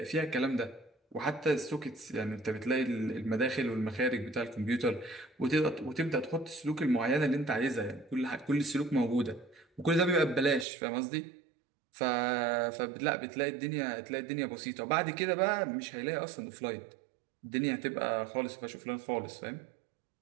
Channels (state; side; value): drops out; left; at 10.7 s